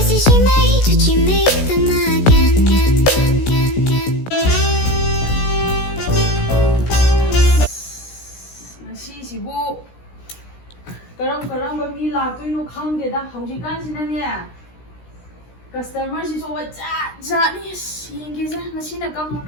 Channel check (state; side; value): late; right; 16 ms